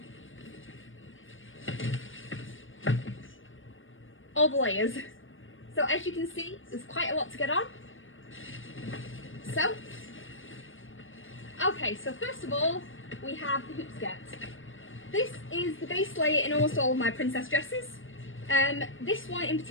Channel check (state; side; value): late; right; 0.58 ms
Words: all the layers. So as you can see, there's quite a lot to get on. So first of all, we have the hoop skirt. This is the base layer in almost all of my princess dresses. This one in